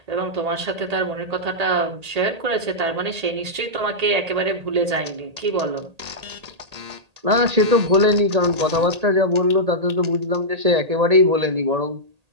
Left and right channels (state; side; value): late; left; 1.8 ms